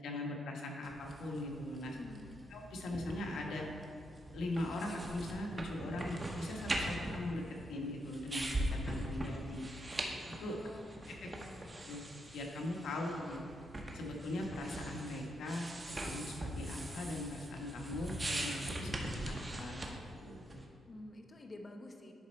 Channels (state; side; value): normal; both; correlation 0.80